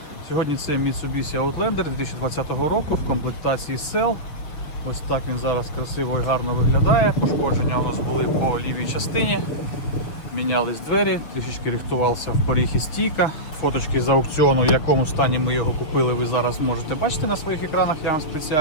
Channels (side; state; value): right; late; 6.5 ms